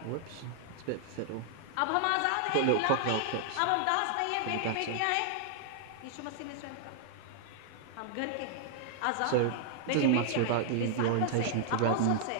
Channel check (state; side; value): different; both; correlation -0.01